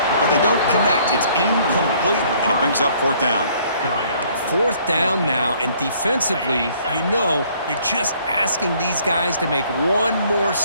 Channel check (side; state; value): both; inverted; correlation -0.61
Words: But they don't connect. It's incomplete, and it brings up 4th down. 4th down now, and defensively, you know, you're just asking these guys to make one more